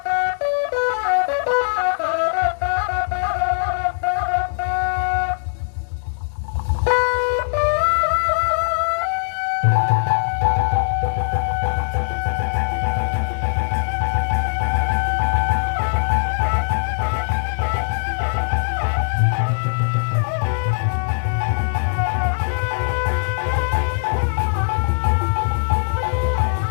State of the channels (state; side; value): silent; right; digital silence